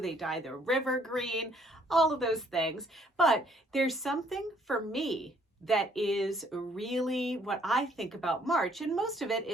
dye the river green, all of those things. But there's something for me that is really what I think about March, and most of it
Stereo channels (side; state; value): both; normal; correlation 0.64